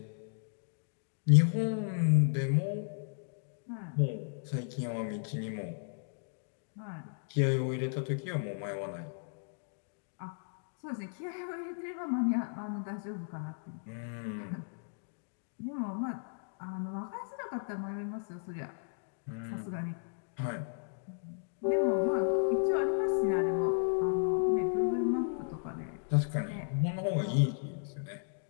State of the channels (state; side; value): silent; right; digital silence